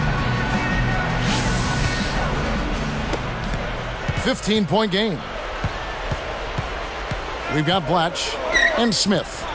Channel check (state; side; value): identical; both; correlation 1.00